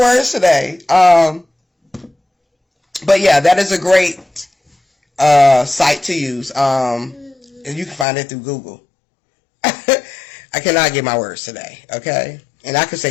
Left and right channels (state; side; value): drops out; right; at 8.1 s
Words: today? But yeah, that is a great site to use. And you can find it through Google. I cannot get my words today, okay? And I can